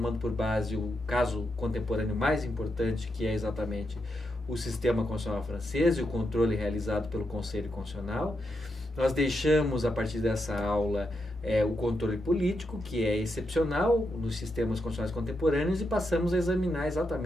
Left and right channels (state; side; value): normal; both; correlation 0.84